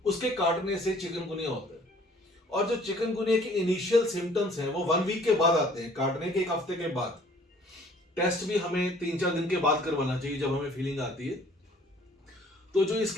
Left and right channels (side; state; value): both; normal; correlation 0.56